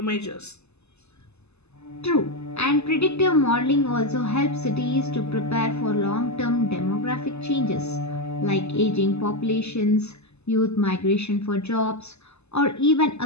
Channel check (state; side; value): late; right; 0.80 ms